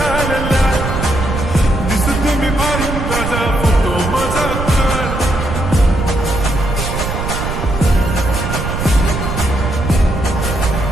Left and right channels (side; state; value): right; noise; rumble, 4 dB below the sound